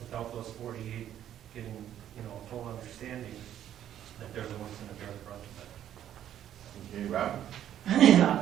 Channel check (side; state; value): left; quieter; 10.9 dB